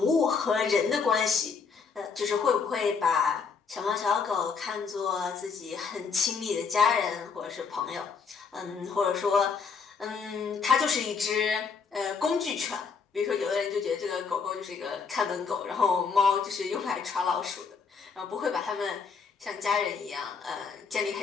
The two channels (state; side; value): quieter; right; 5.5 dB